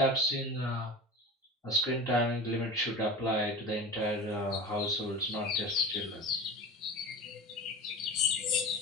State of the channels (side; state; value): both; normal; correlation 0.31